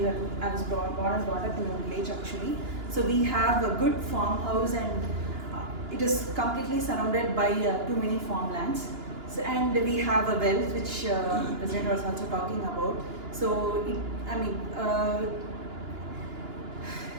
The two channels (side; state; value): left; late; 2.9 ms